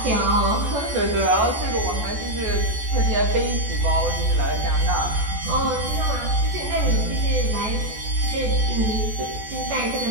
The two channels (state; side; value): late; left; 14 ms